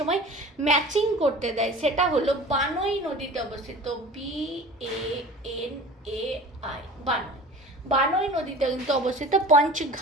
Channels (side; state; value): both; normal; correlation 0.40